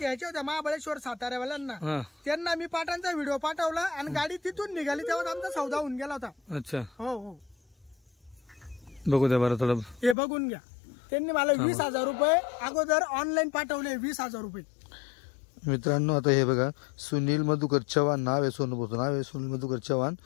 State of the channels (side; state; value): right; drops out; at 10.2 s